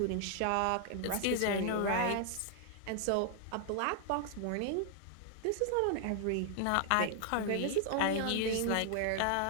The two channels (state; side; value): different; both; correlation 0.00